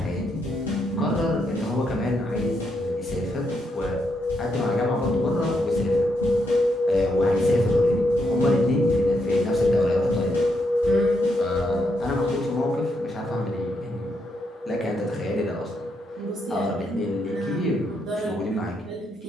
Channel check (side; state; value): both; normal; correlation 0.79